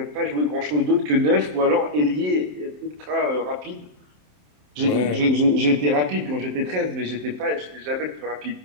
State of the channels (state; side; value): late; left; 27 ms